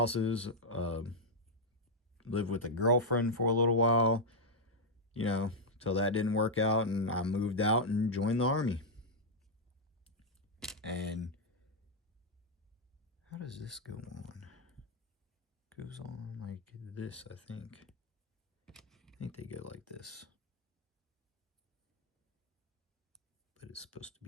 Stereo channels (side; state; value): both; normal; correlation -0.03